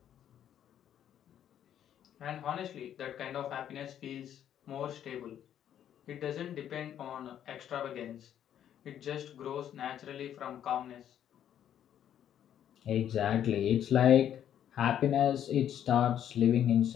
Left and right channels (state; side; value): quieter; right; 10.2 dB